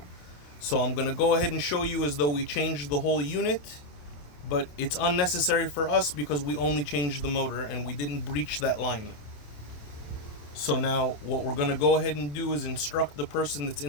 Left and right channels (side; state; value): right; late; 27 ms